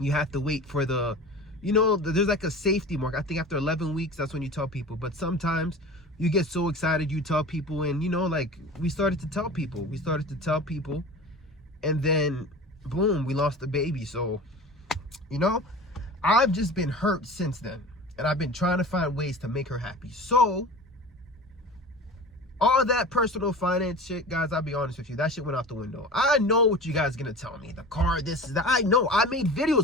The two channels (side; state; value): both; normal; correlation 0.36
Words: You have to wait for there's like a safety mark. I think after 11 weeks, that's when you tell people. But sometimes you get so excited, you tell people, and like, we started to tell people, and then boom, we lost the baby. So, I've just been hurt since then, and I've been trying to find ways to make her happy. So all that personal finance shit, guys, I'll be honest with you, that shit went out the window. I know what you guys are gonna tell me. The car, this is that. I know. I made